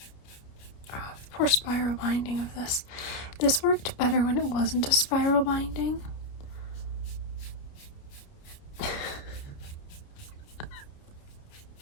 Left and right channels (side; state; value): right; late; 29 ms